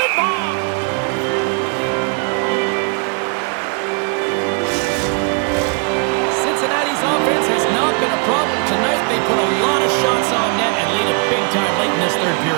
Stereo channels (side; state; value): left; quieter; 37.3 dB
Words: Cincinnati's offense has not been a problem tonight. They put a lot of shots on net and lead it big time late in this third